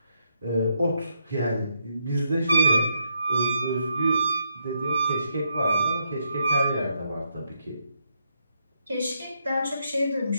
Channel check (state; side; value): inverted; both; correlation -0.79